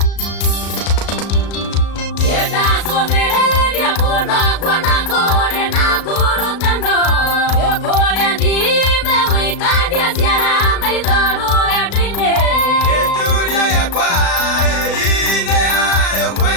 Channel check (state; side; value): late; right; 36 ms